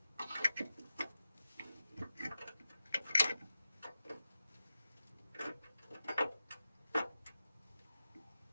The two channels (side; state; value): both; inverted; correlation -0.93